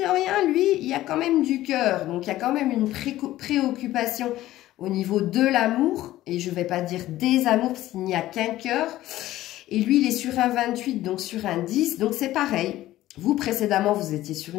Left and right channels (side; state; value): right; quieter; 15.1 dB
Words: rien, lui, il y a quand même du cœur. Donc, il y a quand même une préoccupation au niveau de l'amour. Et je ne vais pas dire des amours, parce qu'il n'y a qu'un cœur. Et lui, il est sur un 28, donc sur un 10. Donc, c'est pareil. Vous, précédemment, vous étiez sur